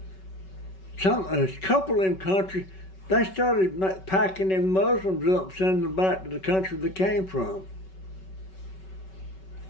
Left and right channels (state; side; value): late; right; 5.3 ms